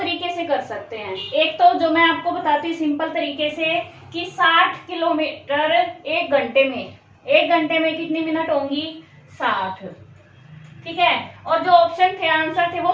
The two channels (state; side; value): identical; both; correlation 1.00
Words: से कर सकते हैं। एक तो जो मैं आपको बताती हूँ सिंपल तरीके से, कि 60 किलोमीटर एक घंटे में, एक घंटे में कितनी मिनट होंगी, 60। ठीक है, और जो ऑप्शन थे, आंसर थे, वो